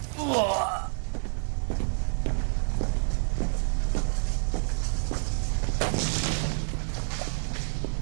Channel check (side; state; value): left; silent; 58 dB below the other